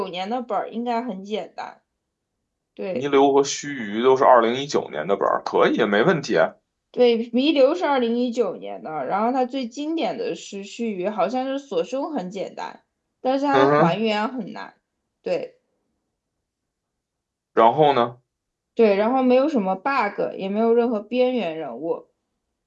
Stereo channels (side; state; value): both; identical; correlation 1.00